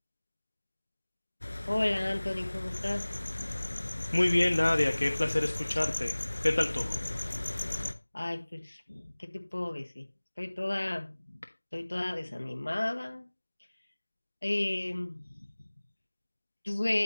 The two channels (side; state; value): both; inverted; correlation -1.00